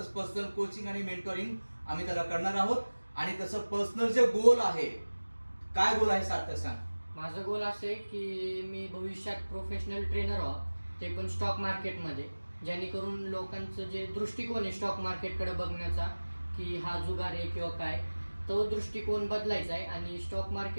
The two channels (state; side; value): inverted; both; correlation -1.00